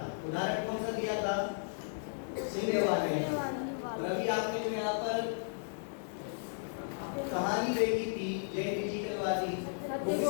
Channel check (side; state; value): right; silent; digital silence